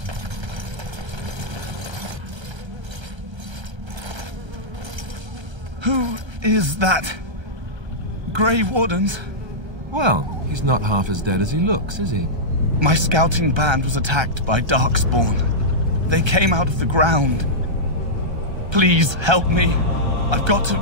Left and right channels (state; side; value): late; left; 1.3 ms